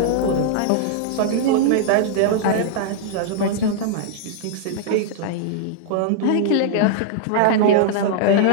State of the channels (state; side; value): different; both; correlation -0.01